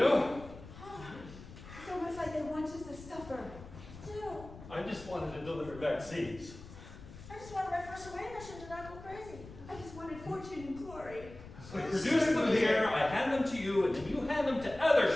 It's almost like they want us to suffer. Do. I just wanted to deliver vaccines. I just wanted my first away mission to not go crazy. I just wanted fortune and glory. I produce them here, I hand them to you, and then you hand them to other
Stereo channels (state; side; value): noise; left; rumble, 16 dB below the sound